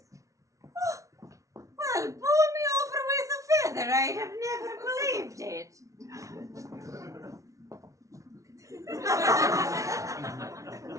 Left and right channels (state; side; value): late; left; 0.15 ms